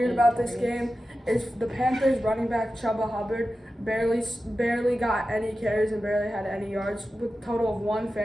about this game is the Panthers running back Chuba Hubbard barely got any carries and barely had any yards, with a total of 1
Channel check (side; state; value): both; normal; correlation 0.93